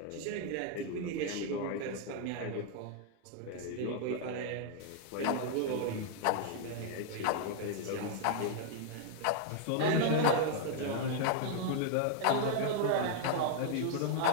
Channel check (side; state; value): both; different; correlation -0.01